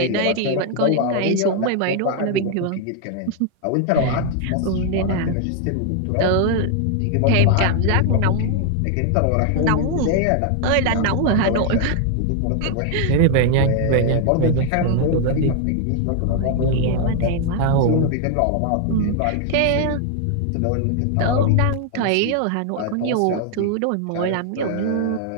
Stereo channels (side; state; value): both; different; correlation 0.00